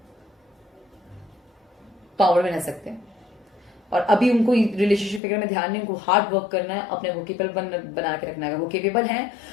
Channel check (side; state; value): right; drops out; at 5.2 s